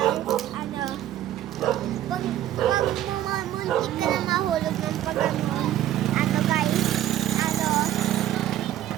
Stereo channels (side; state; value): left; quieter; 12.7 dB